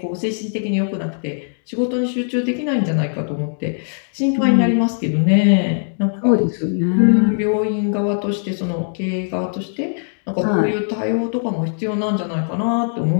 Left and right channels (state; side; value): silent; right; digital silence